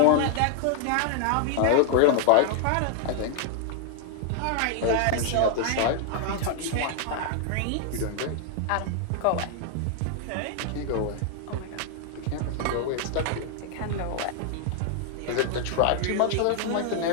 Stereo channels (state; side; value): different; both; correlation 0.00